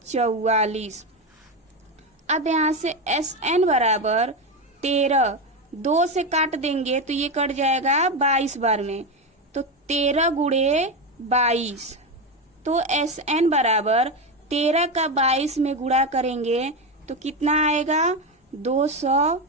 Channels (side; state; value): both; normal; correlation 0.14